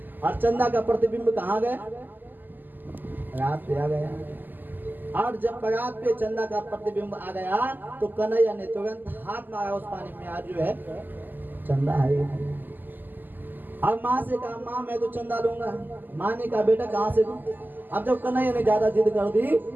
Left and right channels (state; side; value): late; left; 0.088 ms